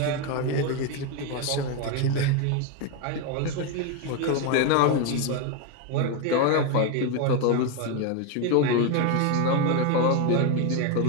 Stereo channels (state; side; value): different; both; correlation 0.02